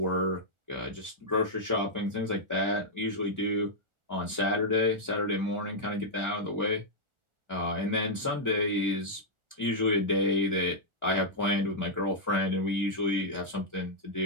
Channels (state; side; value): late; left; 1.4 ms